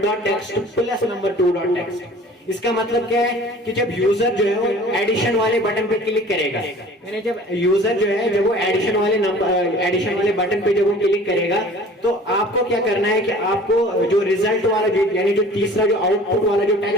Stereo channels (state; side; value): normal; both; correlation 0.46